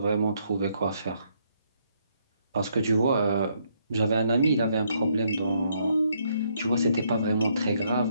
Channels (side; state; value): both; inverted; correlation -0.72